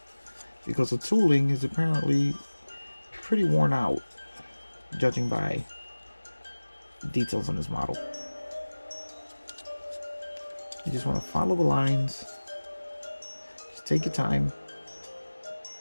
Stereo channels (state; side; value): inverted; both; correlation -1.00